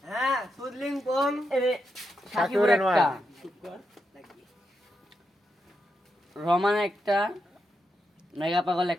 হ্যাঁ সুদলিং কোন সাকিবের একটা, রমান একটা, মেগা পাগল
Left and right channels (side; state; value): both; normal; correlation 0.84